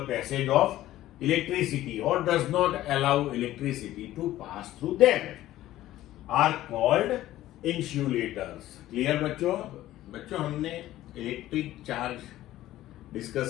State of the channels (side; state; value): right; quieter; 14.6 dB